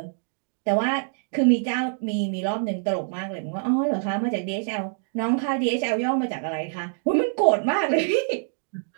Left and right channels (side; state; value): left; silent; digital silence